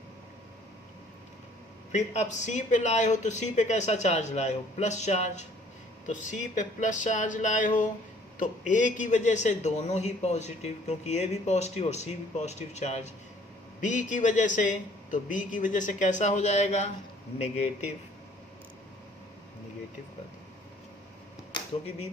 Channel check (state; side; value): normal; both; correlation 0.57